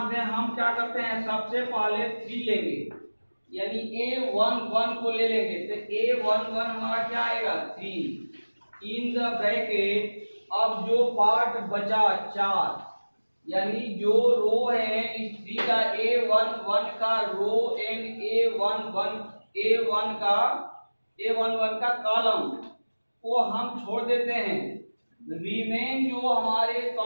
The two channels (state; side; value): inverted; both; correlation -1.00